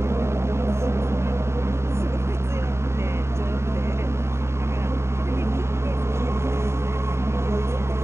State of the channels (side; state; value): left; late; 0.13 ms